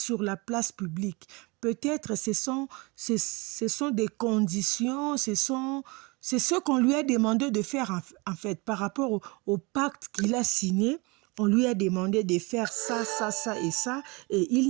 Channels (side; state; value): left; quieter; 27.1 dB